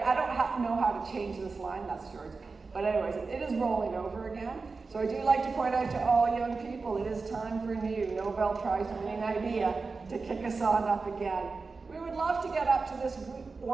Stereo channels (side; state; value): left; quieter; 4.2 dB